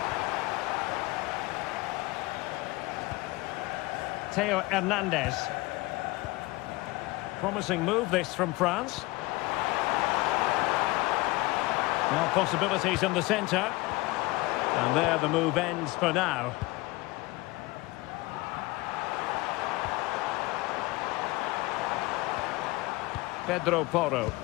Theo Hernandez. Promising move this from France. Now possibilities in the centre. And there the move ends for now. Pedro Porro.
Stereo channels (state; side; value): quieter; right; 21.7 dB